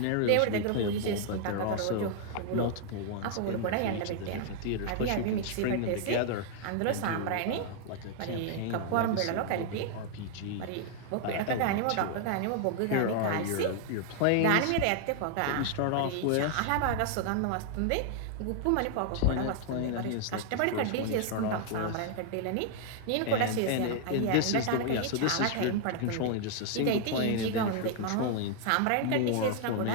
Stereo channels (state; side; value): different; both; correlation 0.00